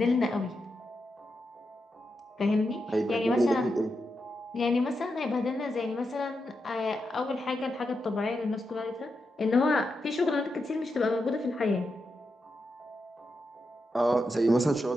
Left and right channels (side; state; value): both; normal; correlation 0.86